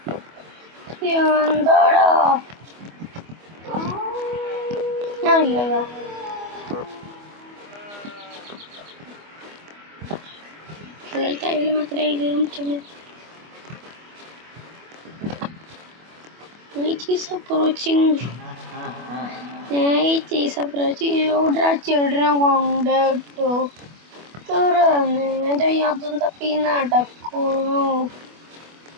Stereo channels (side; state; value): left; late; 25 ms